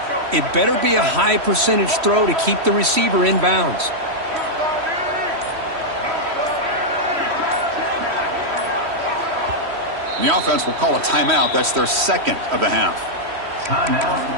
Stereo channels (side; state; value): left; late; 3.1 ms